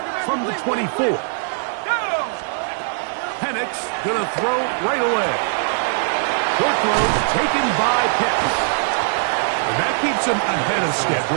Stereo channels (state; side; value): silent; left; digital silence